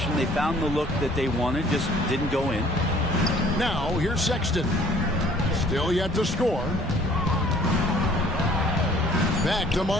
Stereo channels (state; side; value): normal; both; correlation 0.55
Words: They found the look that they wanted, just didn't go in. Now, here's Sexton. Still yet to score. Back to